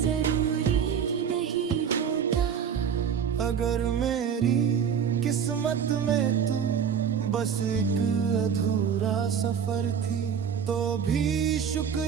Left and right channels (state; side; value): quieter; left; 7.6 dB